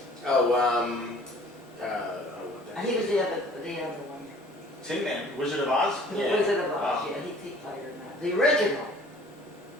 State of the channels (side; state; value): both; normal; correlation 0.52